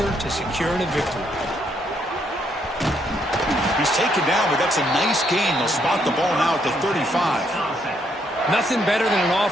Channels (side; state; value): both; normal; correlation 0.73